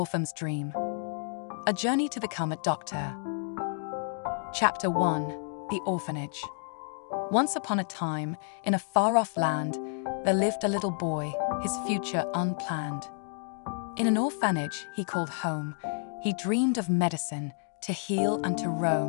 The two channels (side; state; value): right; silent; 57 dB below the other